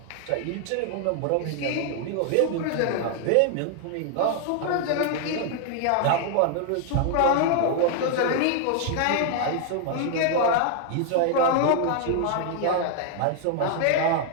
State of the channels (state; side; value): different; both; correlation 0.00